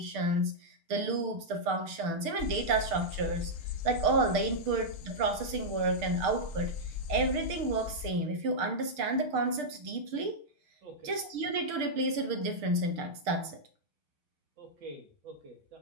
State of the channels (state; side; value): late; left; 6.6 ms